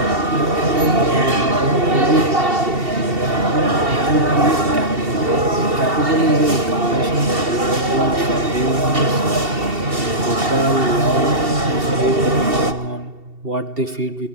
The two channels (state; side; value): late; left; 2.7 ms